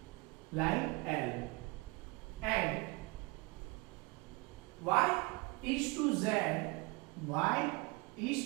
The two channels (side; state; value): left; quieter; 26.1 dB